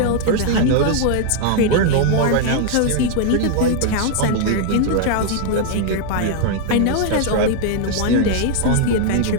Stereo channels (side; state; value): both; different; correlation 0.00